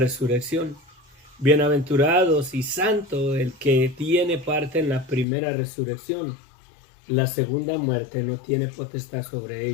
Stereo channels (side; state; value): right; drops out; at 5.2 s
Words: Bienaventurados y santo el que tiene parte en la primera resurrección. La segunda muerte no tiene potestad sobre